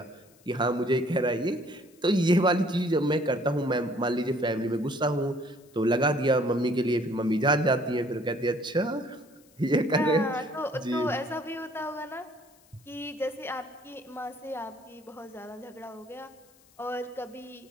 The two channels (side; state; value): left; noise; hiss, 29 dB below the sound